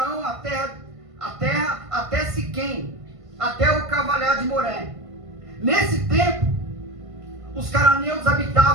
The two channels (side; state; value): left; late; 1.5 ms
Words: a terra até Siquém, até o Cavalhar de Moré. Nesse tempo, os cananeus